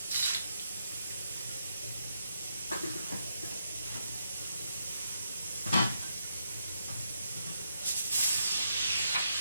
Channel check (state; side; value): inverted; both; correlation -0.80